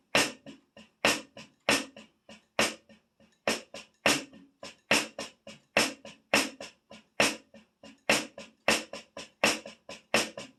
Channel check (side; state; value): both; identical; correlation 1.00